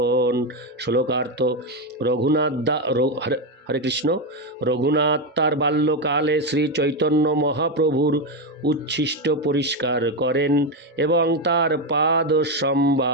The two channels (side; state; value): both; normal; correlation 0.09